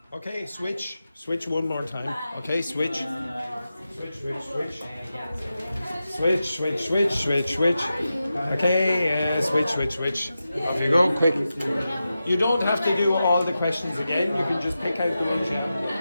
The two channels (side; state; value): both; inverted; correlation -0.91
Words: Okay, switch. Switch one more time. Okay, switch. Switch. Okay, switch. Off you go, quick. You don't have to do all the questions again. You can just pick out the ones you